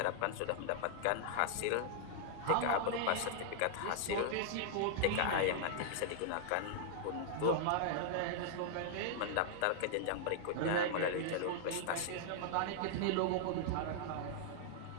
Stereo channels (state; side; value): different; both; correlation -0.01